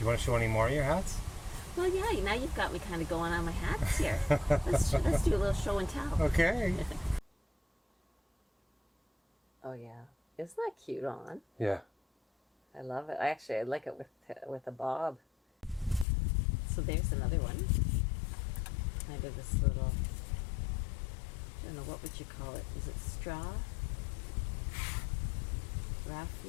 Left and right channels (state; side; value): drops out; right; at 16.1 s